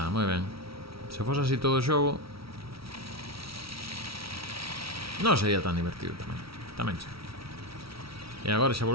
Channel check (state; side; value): late; left; 0.75 ms